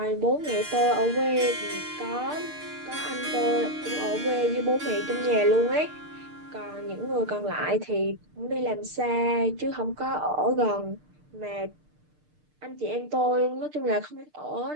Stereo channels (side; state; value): left; late; 6.6 ms